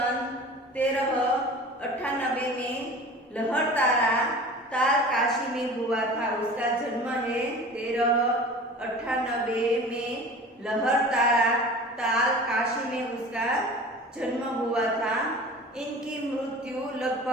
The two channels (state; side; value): normal; both; correlation 0.40